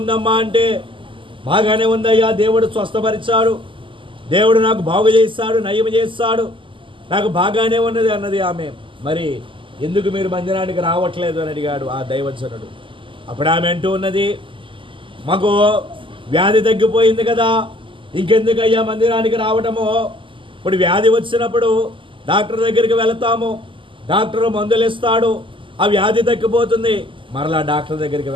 అంటే, బాగానే ఉందయ్యా, దేవుడు స్వస్థపరిచాడు, దేవుడు నాకు బాగు చేస్తాడు, నయం చేస్తాడు, నాకు బాగానే ఉన్నది అన్నది ఆమె. మరి ఎందుకు మీరు మందిరానికి రావట్లేదు అని అడిగాడు ఆ దైవజనుడు. అప్పుడు ఆమె అంటూ ఉన్నది, మాకు వ్యాధి తగ్గిపోయింది కదా, ఇంకెందుకు అయ్యా మందిరానికి రావటము? ఇప్పుడు వ్యాధి వచ్చినప్పుడు డాక్టర్ దగ్గరికి వెళతాము, డాక్టర్ మందులు ఇస్తాడు, ఆ వ్యాధి తగ్గిపోతుంది, మరలా డాక్టర్ దగ్గరికి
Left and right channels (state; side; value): late; left; 0.25 ms